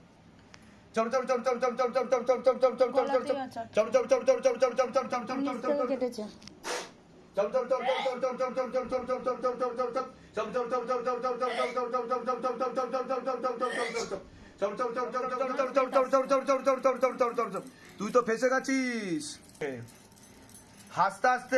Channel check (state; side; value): identical; both; correlation 1.00